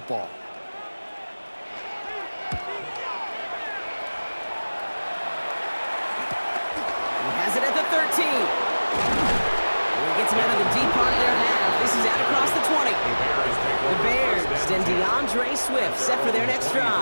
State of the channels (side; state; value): both; inverted; correlation -1.00